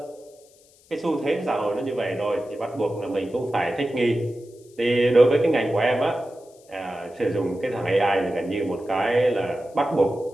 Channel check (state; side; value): noise; left; hiss, 29 dB below the sound